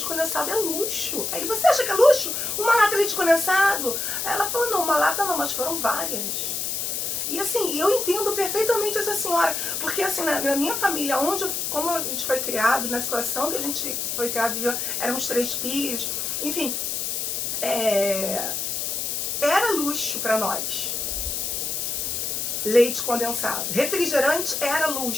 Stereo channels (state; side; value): noise; left; hiss, 2 dB below the sound